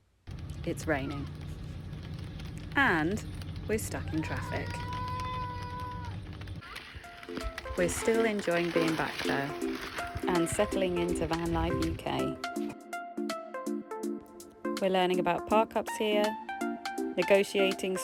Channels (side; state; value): both; identical; correlation 1.00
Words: it's raining. And we're stuck in traffic. We're still enjoying being back there and settling into Van Life UK. We're learning about park-ups here, negotiating